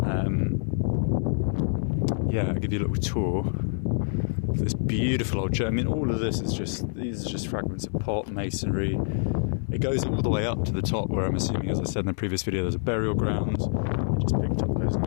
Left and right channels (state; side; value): silent; right; 58 dB below the other